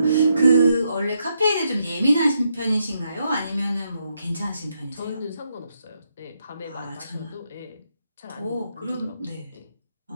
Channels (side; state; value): both; inverted; correlation -0.79